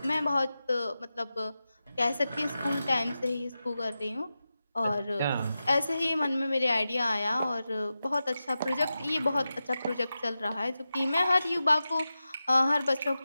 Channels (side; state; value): both; inverted; correlation -0.92